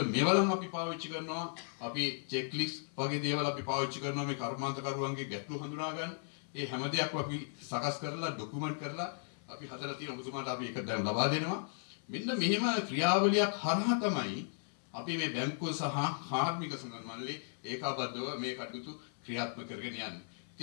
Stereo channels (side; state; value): right; silent; 54 dB below the other